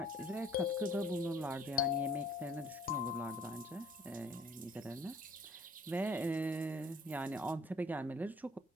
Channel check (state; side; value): normal; both; correlation 0.57